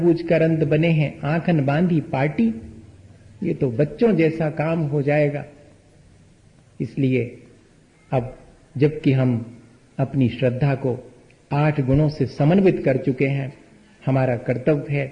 अंध बने हैं आंखन बांधी पार्टी। ये तो बच्चों जैसा काम हो जाएगा। इसलिए अब जबकि हम अपनी श्रद्धा को 8 गुणों से समन्वित कर चुके हैं, हमारा कर्तव्य है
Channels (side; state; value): both; identical; correlation 1.00